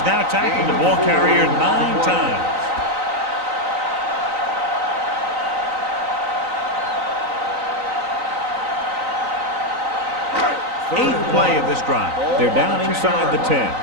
now tackled the ball carrier 9 times. Eighth play of this drive. They're down inside the 10.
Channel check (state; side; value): late; left; 3.9 ms